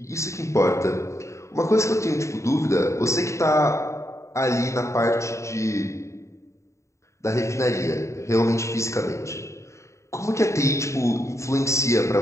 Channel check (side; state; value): right; late; 0.14 ms